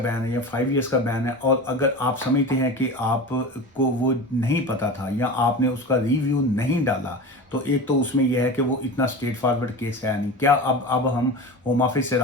है या 5 ईयर्स का बैन है, और अगर आप समझते हैं कि आपको वो नहीं पता था या आपने उसका रिव्यू नहीं डाला, तो एक तो उसमें यह है कि वो इतना स्ट्रेट फॉरवर्ड केस है नहीं। क्या अब हम होम ऑफिस से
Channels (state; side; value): normal; both; correlation 0.30